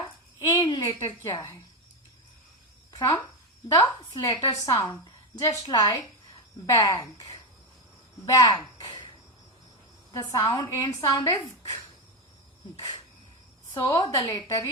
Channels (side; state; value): both; normal; correlation 0.12